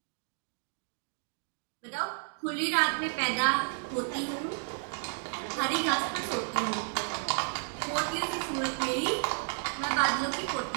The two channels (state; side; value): silent; left; 56 dB below the other